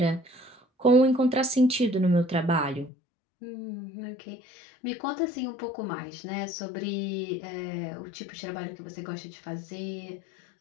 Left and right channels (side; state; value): right; drops out; at 2.9 s